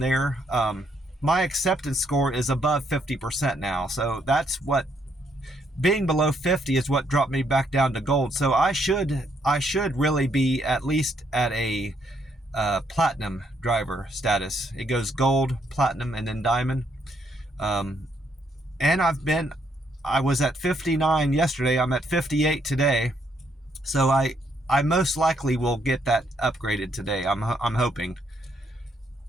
My acceptance score is above 50% now. So that's what, being below 50 is what dropped me back down to gold. So I should really be at least at a platinum driver status. It goes gold, platinum, and then diamond. And I was at 59 yesterday. I'm at 58 today. So I most likely will get that upgraded today. I'm hoping.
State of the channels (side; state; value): both; normal; correlation 0.72